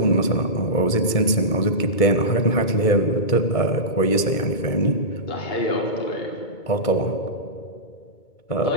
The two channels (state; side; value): late; right; 2.2 ms